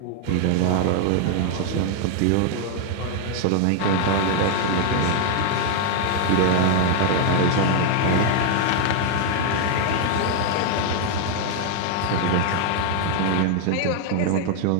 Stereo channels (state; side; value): different; both; correlation 0.00